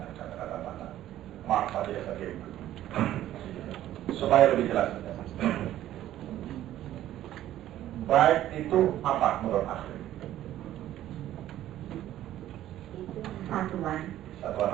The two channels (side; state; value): left; quieter; 13.0 dB